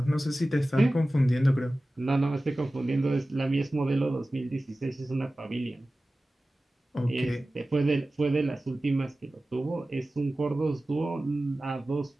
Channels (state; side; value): normal; both; correlation 0.96